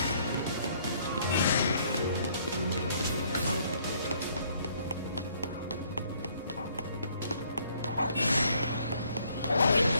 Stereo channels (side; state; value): both; inverted; correlation -0.64